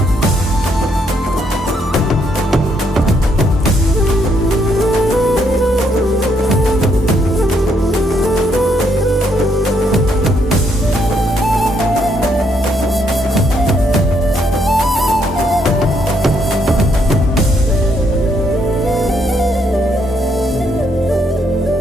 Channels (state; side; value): normal; both; correlation 0.73